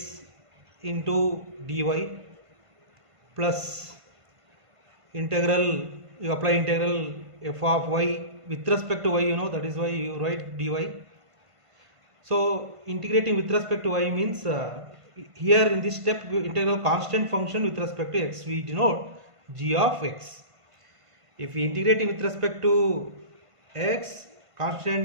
into dy plus integral, you apply integral f of y with respect to y, that is why you write dy. So integrating with respect to y means here in this step integral constant function with respect to x we denote g of x. If we integrating with respect to x,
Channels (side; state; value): left; late; 1.5 ms